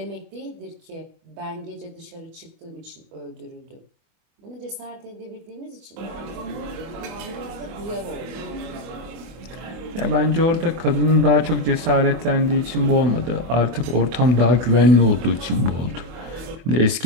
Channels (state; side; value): late; left; 24 ms